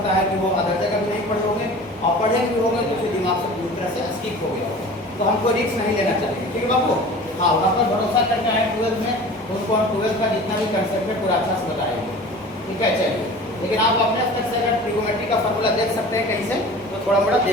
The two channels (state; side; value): normal; both; correlation 0.40